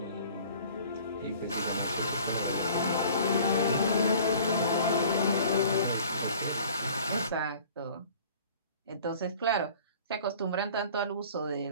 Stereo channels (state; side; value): inverted; both; correlation -0.49